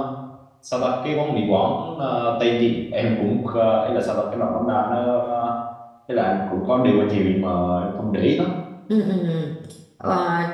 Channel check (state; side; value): identical; both; correlation 1.00